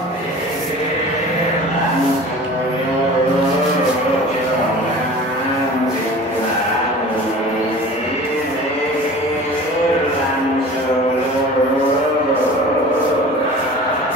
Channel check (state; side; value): normal; both; correlation 0.40